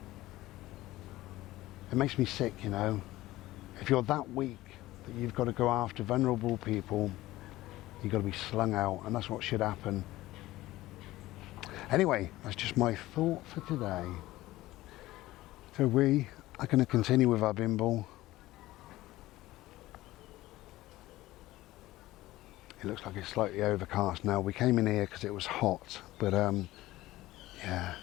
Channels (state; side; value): quieter; right; 17.0 dB